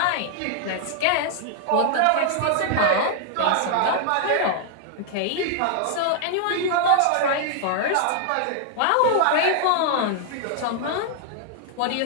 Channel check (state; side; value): different; both; correlation -0.01